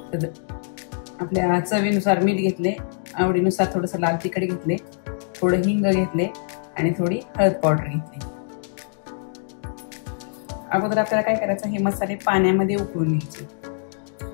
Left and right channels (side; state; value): right; silent; digital silence